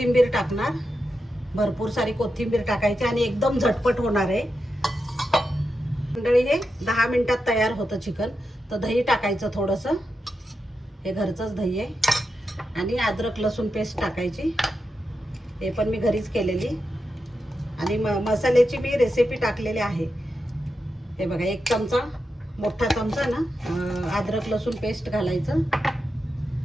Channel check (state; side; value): normal; both; correlation 0.88